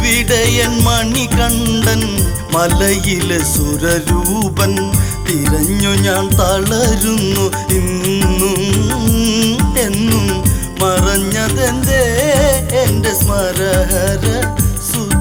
മണികണ്ഠൻ മലയിലെ സുരരൂപൻ. തിരഞ്ഞു ഞാൻ തളരുന്നു ഇന്നും എന്നും, മറഞ്ഞതെന്തേ എന്റെ സ്മരഹര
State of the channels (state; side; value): identical; both; correlation 1.00